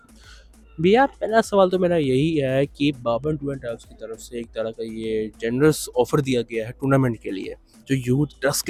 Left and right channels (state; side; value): identical; both; correlation 1.00